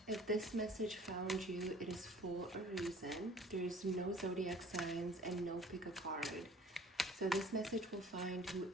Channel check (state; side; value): normal; both; correlation 0.50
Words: If this message found you, it is for a reason. There is no zodiac signs and no pick a card. So this message will find